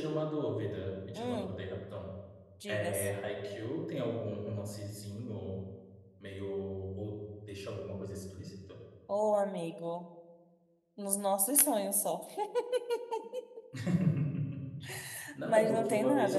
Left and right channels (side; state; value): both; identical; correlation 1.00